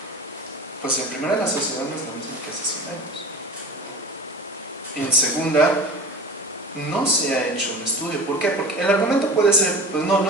pues en primera, la sociedad no es la misma que hace 100 años. En segunda, no se ha hecho un estudio. ¿Por qué? Porque el argumento puede ser, pues no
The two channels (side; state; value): both; normal; correlation 0.36